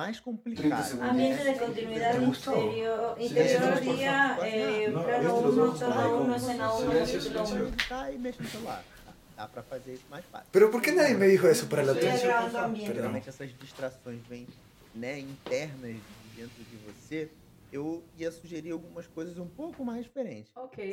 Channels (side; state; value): both; identical; correlation 1.00